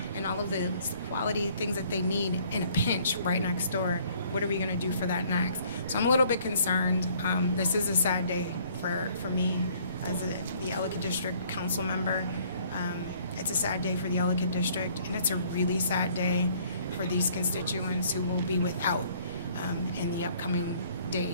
and all of the quality things that they need in a pinch right next door. What are we going to do for that next? So I'm a little bit concerned. This is a sad day for me as the Ellicott District Council member. It's a sad day for the Ellicott District, and it's a really sad day for these constituents who will be without in the upcoming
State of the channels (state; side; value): inverted; both; correlation -0.60